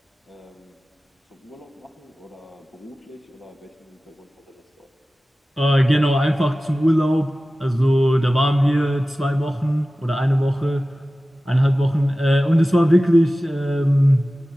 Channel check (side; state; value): both; normal; correlation 0.96